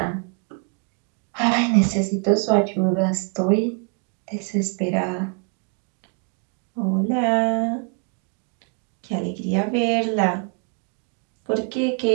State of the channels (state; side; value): quieter; left; 36.2 dB